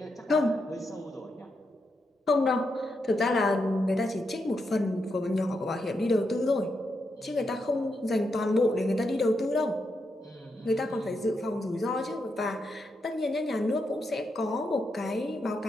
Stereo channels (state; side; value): normal; both; correlation 0.83